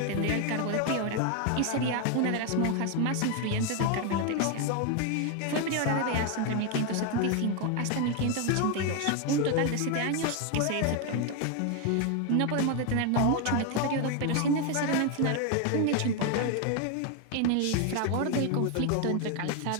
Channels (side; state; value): both; different; correlation 0.01